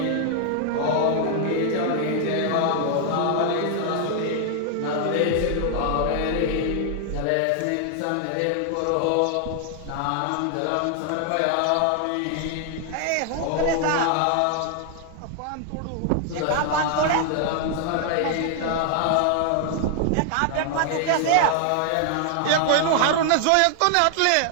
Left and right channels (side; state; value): both; different; correlation 0.00